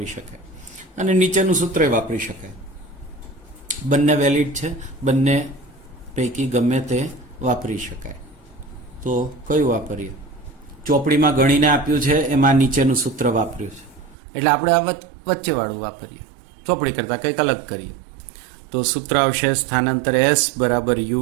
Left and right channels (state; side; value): drops out; left; at 14.2 s